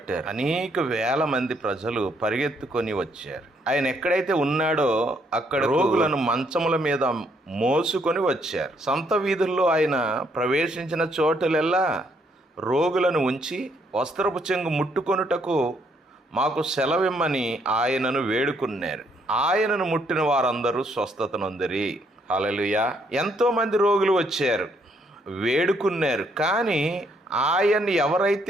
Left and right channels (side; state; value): both; normal; correlation 0.71